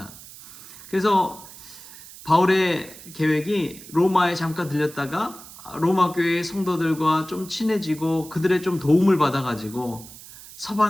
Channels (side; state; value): right; noise; hiss, 17 dB below the sound